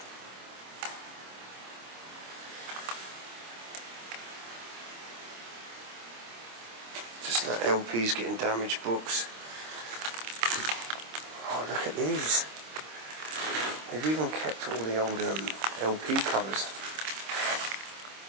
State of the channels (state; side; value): late; left; 26 ms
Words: Just like LPs getting damaged, books. Oh, look at these. They've even kept all the old LP covers.